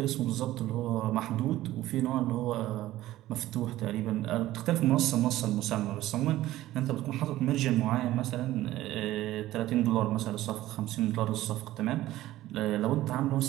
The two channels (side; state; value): left; quieter; 15.3 dB